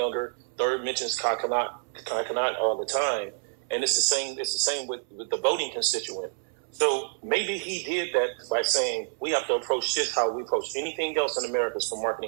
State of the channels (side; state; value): left; silent; 59 dB below the other